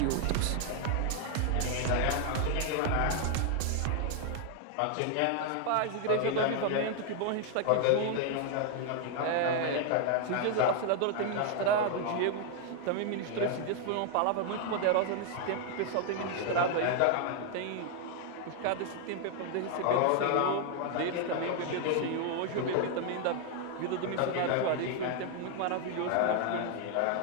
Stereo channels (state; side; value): different; both; correlation 0.00